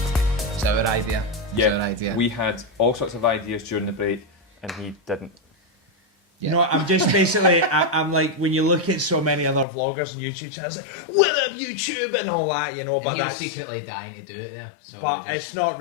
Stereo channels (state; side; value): drops out; right; at 9.7 s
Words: It's our idea. Yeah, It's our idea. we had all sorts of ideas during the break, and he didn't. Yeah. You know, I'm just basically, I'm like, when you look at so many other vloggers and YouTube channels, like, what up YouTube and all that, you know, And but he was that's, secretly dying to do it there. So but we just, it's not